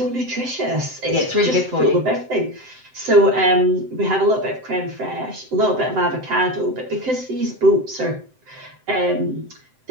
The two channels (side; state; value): left; late; 7.8 ms